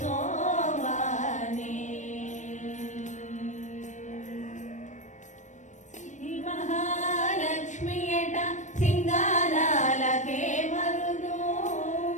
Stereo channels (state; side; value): late; right; 0.35 ms